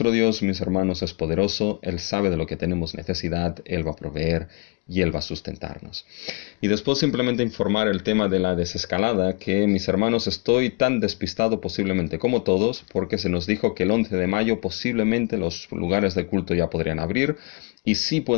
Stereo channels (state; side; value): quieter; right; 28.7 dB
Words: Dios, mis hermanos, es poderoso, Él sabe de lo que tenemos necesidad, Él va a proveer y Él va a sustentarnos. Y después simplemente informar el tema de la desescalada, que, mis hermanos, estoy tan despistado posiblemente como todos, porque se nos dijo que el 11 de mayo posiblemente los lugares de culto ya podrían abrir, y sí